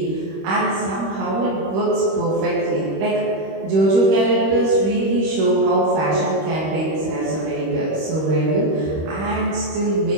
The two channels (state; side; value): late; left; 26 ms